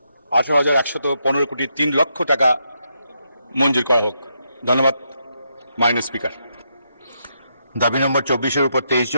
18,115,03,00,000 টাকা মঞ্জুর করা হোক। ধন্যবাদ মাননীয় স্পিকার। দাবি নম্বর 24-এর উপর 23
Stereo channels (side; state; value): both; inverted; correlation -0.80